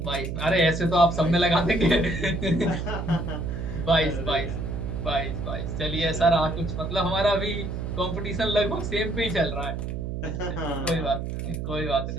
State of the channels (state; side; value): noise; right; hum, 4 dB below the sound